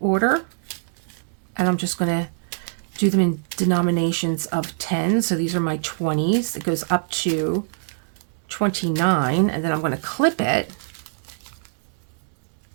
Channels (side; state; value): left; silent; digital silence